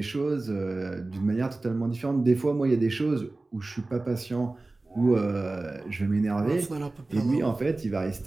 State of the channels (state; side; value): quieter; left; 3.1 dB